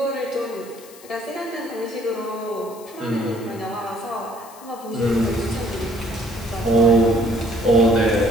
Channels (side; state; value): left; noise; hiss, 21 dB below the sound